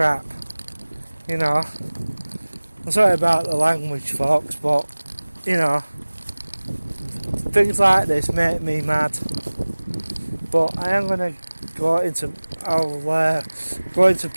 You know, I'm sorry about the language, folks, but you know, things like this make me mad. But I am going to I'll go into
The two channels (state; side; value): inverted; both; correlation -1.00